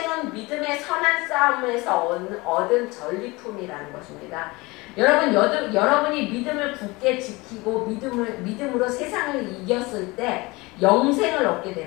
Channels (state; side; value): quieter; right; 23.4 dB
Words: 믿음의 선한 싸움에서 얻은 전리품이라는 것입니다. 여러분이 믿음을 굳게 지키고 믿음으로 세상을 이겼을 때 영생을 얻게